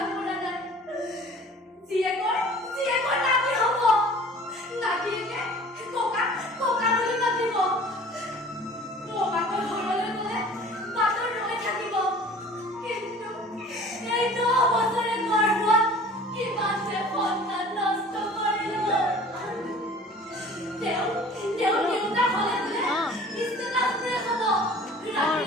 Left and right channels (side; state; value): both; normal; correlation 0.46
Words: কৰা নাই জীয়েকৰ নাতি হ'ব নাতিয়েকে ককা বুলি মাতিব ককাকৰ ঘৰলৈ গ'লে বাটত ৰৈ থাকিব কিন্তু এই 10 বছৰে গৰ্ভত কিমান যে সন্তান নষ্ট কৰিলো তেওঁ দেউতা হ'লে বোলে ষ্টেটাছ ব্ৰেক হ'ব